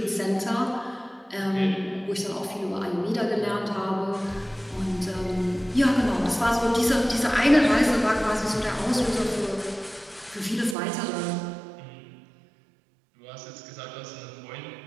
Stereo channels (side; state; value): left; drops out; at 10.8 s